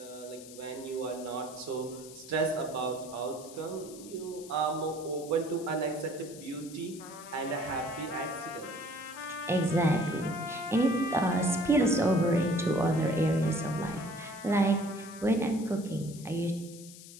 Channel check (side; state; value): left; noise; hiss, 17 dB below the sound